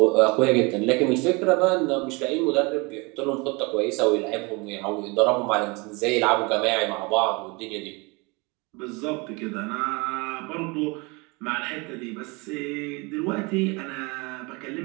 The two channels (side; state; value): left; quieter; 27.6 dB